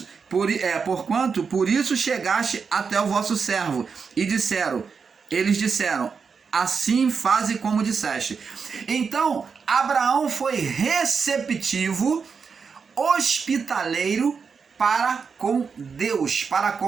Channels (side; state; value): left; quieter; 5.7 dB